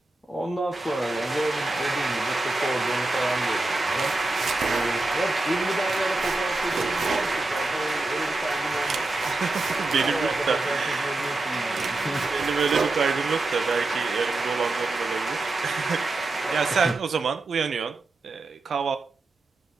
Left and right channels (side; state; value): left; quieter; 3.1 dB